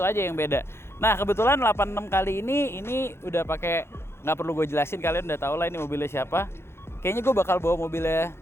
aja yang beda. Nah kebetulan 86 kali ini udah pakai, nggak perlu gue jelasin, kalian udah tahu lah ini mobilnya siapa. Kayaknya gue bakal bawa mobilnya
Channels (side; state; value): right; late; 0.12 ms